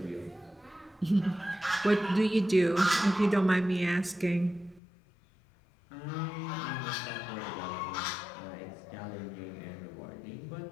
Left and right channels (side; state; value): right; drops out; at 4.8 s